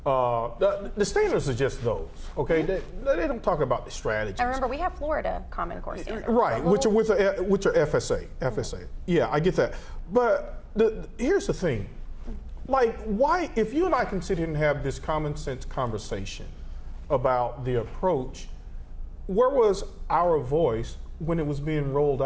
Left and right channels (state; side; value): identical; both; correlation 1.00